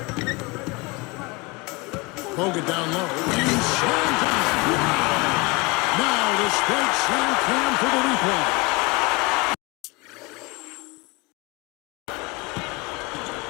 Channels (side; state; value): right; quieter; 25.6 dB